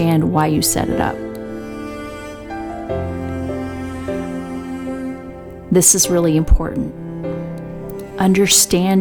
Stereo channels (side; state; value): both; identical; correlation 1.00